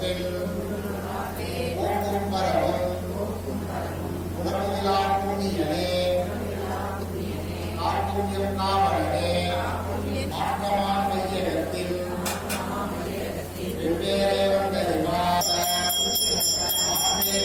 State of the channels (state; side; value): identical; both; correlation 1.00